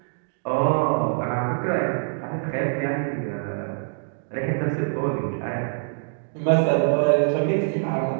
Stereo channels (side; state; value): left; silent; digital silence